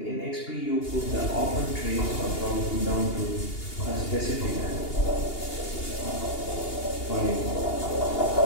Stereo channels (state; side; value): late; right; 2.8 ms